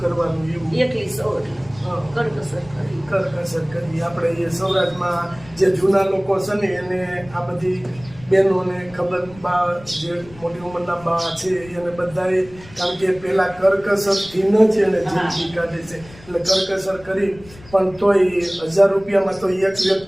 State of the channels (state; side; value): noise; left; rumble, 21 dB below the sound